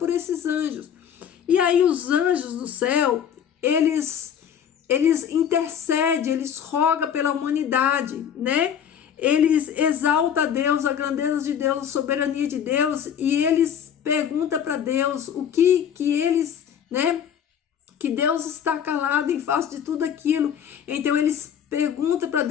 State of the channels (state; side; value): quieter; right; 8.6 dB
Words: esses anjos. E aí os anjos do céu, eles intercedem, eles rogam pela humanidade, né? Eles exaltam a Deus, a grandeza de Deus, a soberania de Deus, e eles perguntam para Deus o que eles, né? Que Deus está calado em face de tudo aquilo. Então eles perguntam para